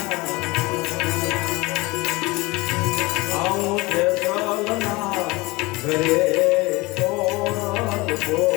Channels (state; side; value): quieter; right; 23.0 dB